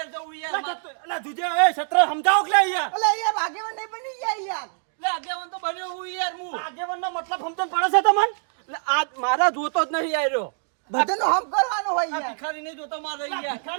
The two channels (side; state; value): left; silent; 59 dB below the other